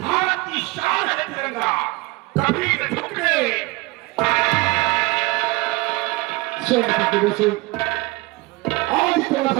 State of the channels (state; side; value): quieter; left; 22.7 dB